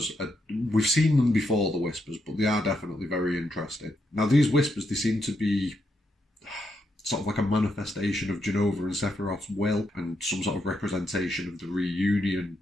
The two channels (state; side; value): normal; both; correlation 0.81